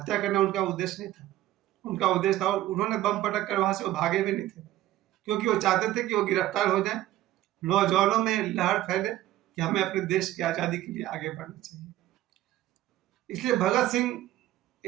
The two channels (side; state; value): left; quieter; 14.5 dB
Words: करना उनका उद्देश्य नहीं था। उनका उद्देश्य था और उन्होंने बम पटक कर वहां से वो भागे भी नहीं थे, क्योंकि वो चाहते थे कि वो गिरफ्तार हो जाए, नौजवानों में लहर फैले कि हमें अपने देश की आज़ादी के लिए आगे बढ़ना चाहिए। इसलिए भगत सिंह